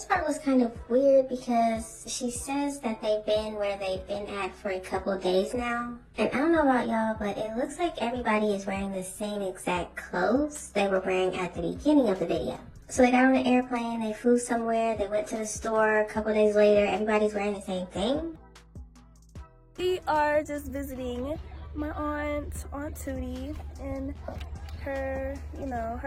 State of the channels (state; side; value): identical; both; correlation 1.00